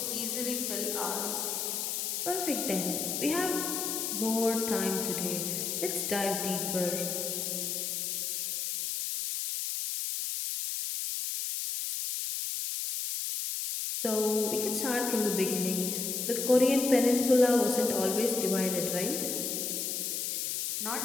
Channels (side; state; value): left; noise; hiss, 1 dB below the sound